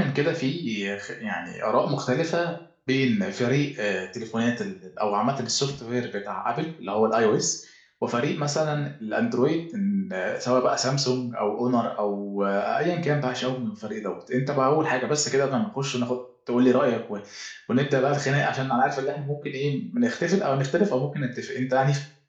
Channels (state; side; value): identical; both; correlation 1.00